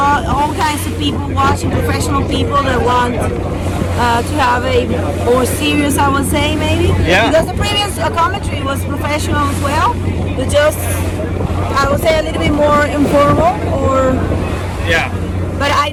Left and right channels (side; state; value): both; identical; correlation 1.00